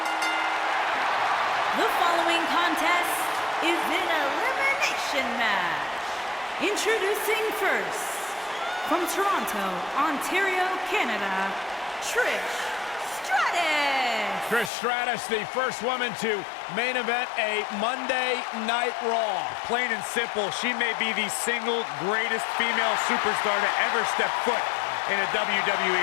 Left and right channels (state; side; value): drops out; right; at 14.7 s